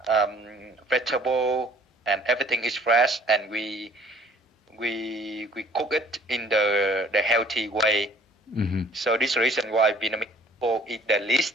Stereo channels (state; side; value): normal; both; correlation 0.54